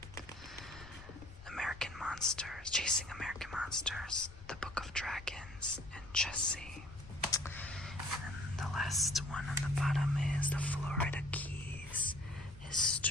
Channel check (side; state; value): left; noise; rumble, 18 dB below the sound